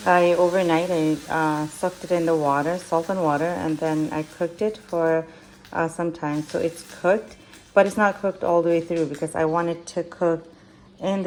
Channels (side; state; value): both; identical; correlation 1.00